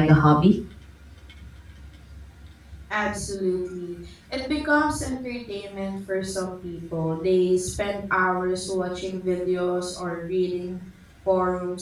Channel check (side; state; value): both; identical; correlation 1.00